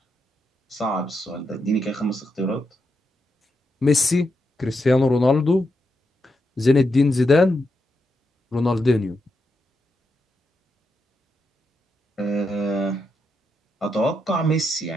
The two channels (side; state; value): both; normal; correlation 0.84